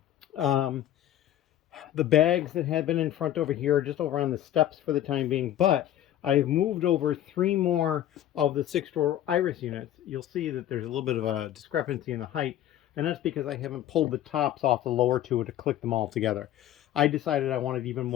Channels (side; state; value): right; quieter; 12.1 dB